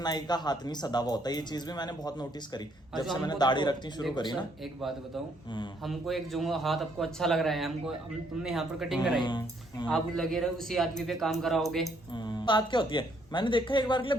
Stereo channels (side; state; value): both; normal; correlation 0.69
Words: का हाथ नहीं सदा हुआ होता है। ये चीज भी मैंने बहुत नोटिस करी जब से मैंने दाढ़ी रखनी शुरू करी ना। एक बात बताऊं, हमको एक जो हाथ आपको अच्छा लग रहा है, तुमने यहाँ पर कटिंग कराई, आप लगे रहे उसी आदमी पे काम कराओगे। बात क्या होती है, मैंने देखा एक बार के लिए